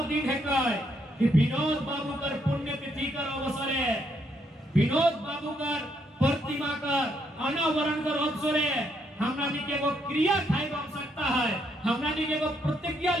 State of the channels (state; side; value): normal; both; correlation 0.74